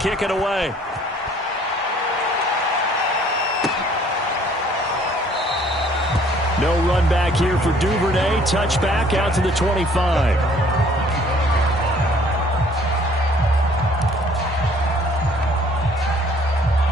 it away. No run back here for Duvernay. Touchback out to the 25.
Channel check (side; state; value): both; normal; correlation 0.58